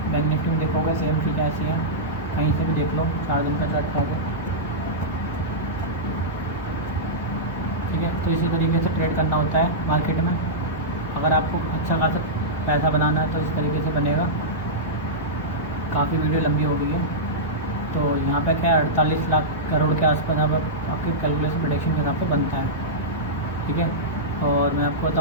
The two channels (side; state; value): both; normal; correlation -0.12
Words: बैंक निफ्टी में देखोगे सेम चीज़ें ऐसी हैं, कहीं से भी देख लो, 4 दिन का चार्ट खाओगे। ठीक है, तो इसी तरीके से ट्रेड करना होता है मार्केट में। अगर आपको अच्छा खासा पैसा बनाना है तो इस तरीके से बनेगा। काफ़ी वीडियो लंबी हो गई है, तो यहाँ पे क्या 48 लाख करोड़ के आसपास अब आपके कैलकुलेशन प्रेडिक्शन के हिसाब से बनता है। ठीक है, और मैं आपको